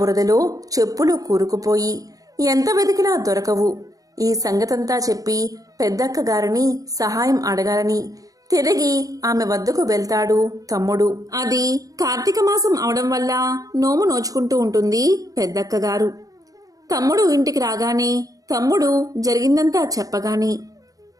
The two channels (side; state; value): left; late; 0.17 ms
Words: చెప్పులు కూరుకుపోయి ఎంత వెతికినా దొరకవు. ఈ సంగతంతా చెప్పి పెద్దక్కగారిని సహాయం అడగాలని తిరిగి ఆమె వద్దకు వెళ్తాడు తమ్ముడు. అది కార్తీక మాసం అవడం వల్ల నోము నోచుకుంటూ ఉంటుంది పెద్దక్కగారు. తమ్ముడు ఇంటికి రాగానే తమ్ముడు జరిగిందంతా చెప్పగానే